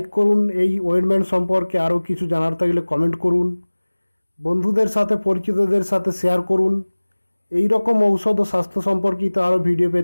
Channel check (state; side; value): inverted; both; correlation -1.00